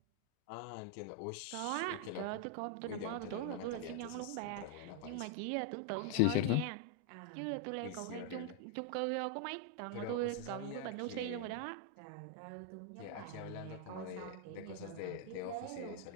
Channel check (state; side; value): different; both; correlation 0.00